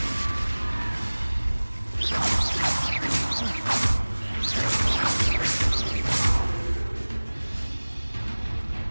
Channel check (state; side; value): inverted; both; correlation -1.00